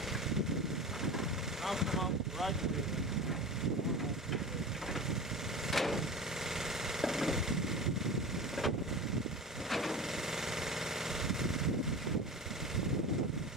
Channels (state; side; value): normal; both; correlation 0.30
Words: I'll come out right away.